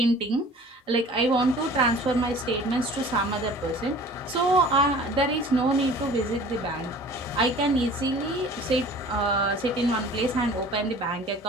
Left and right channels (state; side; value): normal; both; correlation 0.46